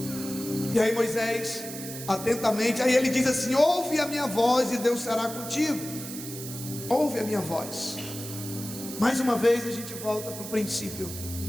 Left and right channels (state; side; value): noise; right; hiss, 10 dB below the sound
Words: E aí Moisés, atentamente, aí ele diz assim: ouve a minha voz e Deus será contigo. Ouve a minha voz. Mais uma vez a gente volta para o princípio